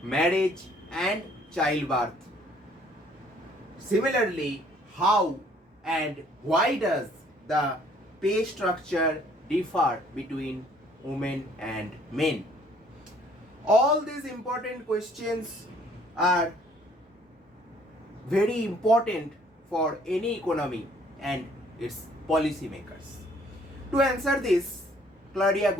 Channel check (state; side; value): normal; both; correlation 0.60